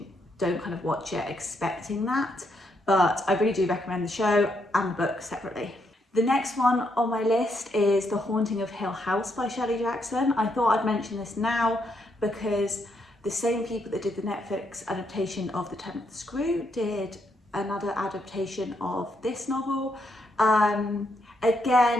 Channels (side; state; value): both; normal; correlation 0.77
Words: it expecting that. But I really do recommend the show and the book separately. The next one on my list is The Haunting of Hill House by Shelley Jackson. I thought I'd mention this now because the same people that did the Netflix adaptation of The Turn of the Screw did another adaptation of this novel.